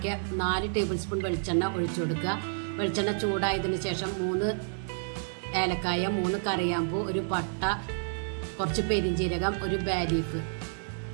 4 ടേബിൾ സ്പൂൺ വെളിച്ചെണ്ണ ഒഴിച്ചു കൊടുക്കുക. വെളിച്ചെണ്ണ ചൂടായതിന് ശേഷം 3 ഏലക്കായ, 3 കറിയാമ്പൂ, ഒരു പട്ട, കുറച്ച് പെരിഞ്ജീരകം, ഒരു ബേ ലീഫ്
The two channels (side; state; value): left; silent; 58 dB below the other